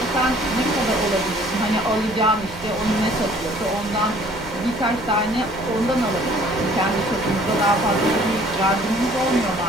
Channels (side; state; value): both; normal; correlation 0.56